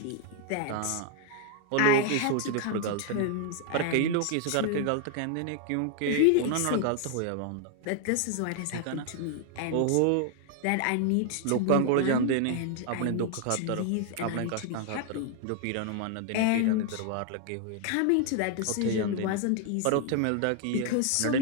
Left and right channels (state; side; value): different; both; correlation 0.00